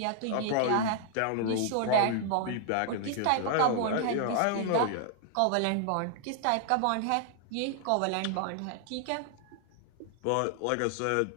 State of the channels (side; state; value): both; different; correlation 0.00